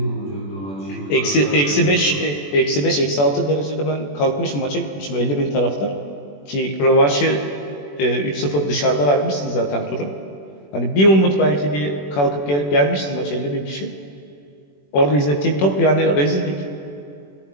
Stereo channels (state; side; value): late; right; 21 ms